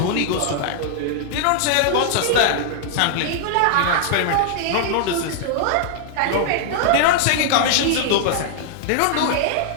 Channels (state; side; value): different; both; correlation -0.01